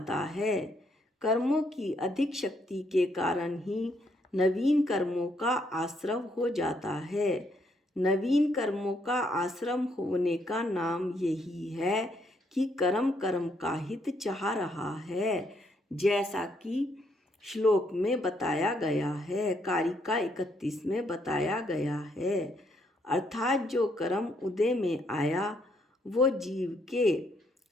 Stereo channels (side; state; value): both; normal; correlation 0.73